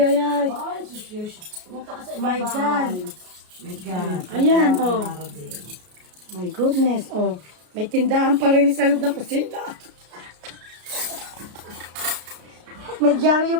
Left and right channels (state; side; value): late; left; 33 ms